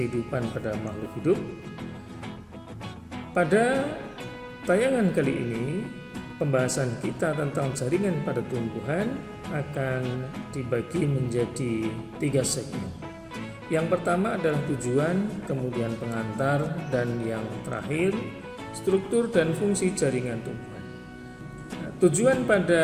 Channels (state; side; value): identical; both; correlation 1.00